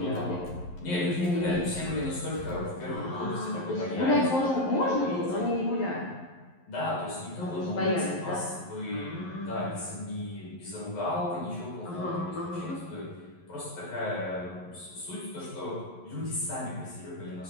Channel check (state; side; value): late; right; 11 ms